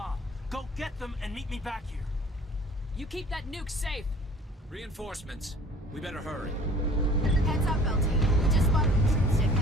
Go get them and meet me back here. You keep that nuke safe. Reinforcements. We better hurry. Heads up, LT. We just spotted a troop ship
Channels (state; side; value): normal; both; correlation 0.50